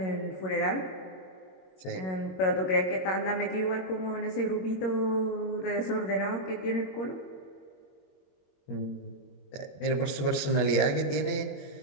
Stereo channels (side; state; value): right; late; 21 ms